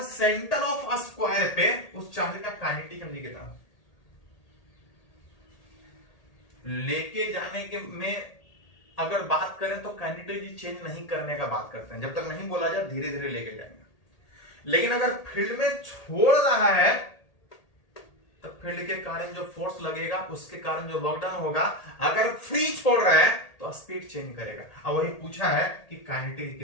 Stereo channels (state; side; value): late; right; 1.8 ms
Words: सेंटर ऑफ स्क्वायर पे उस चार्ज का काइनेटिक एनर्जी कितना। लेके जाने के में अगर बात करें तो काइनेटिक एनर्जी चेंज नहीं करने का बात करते हैं, जब तक नहीं बोला जाए धीरे धीरे लेके जाएंगे। लेकिन अगर फील्ड में छोड़ रहा है तो फील्ड के कारण जो फोर्स लगेगा, उसके कारण जो वर्क डन होगा, अगर फ्री छोड़ रहा है तो स्पीड चेंज करेगा। अब वही पूछा है कि काइनेटिक